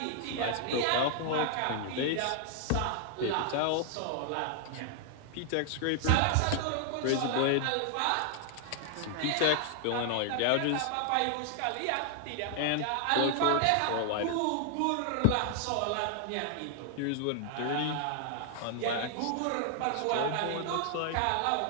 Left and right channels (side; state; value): both; different; correlation 0.00